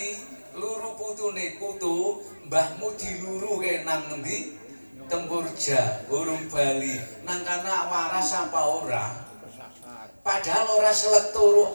luru putune putu, mbahmu diluruke nang endi? Tempurja, urung bali. Nang kana waras apa ora? Padahal ora selek turu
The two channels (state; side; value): inverted; both; correlation -1.00